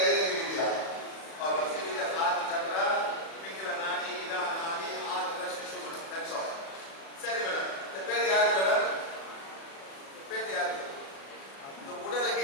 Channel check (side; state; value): right; late; 36 ms